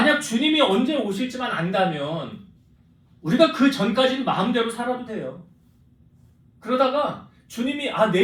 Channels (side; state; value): both; identical; correlation 1.00